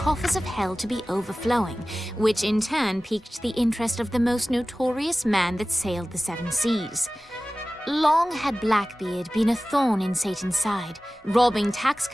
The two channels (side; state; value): both; normal; correlation 0.97